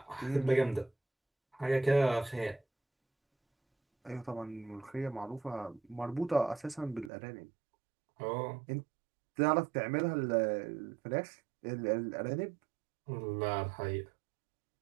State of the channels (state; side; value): drops out; left; at 7.1 s